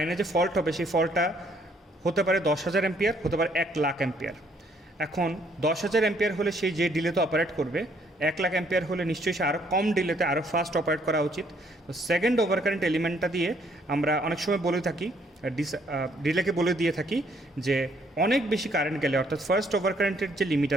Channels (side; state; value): both; normal; correlation 0.66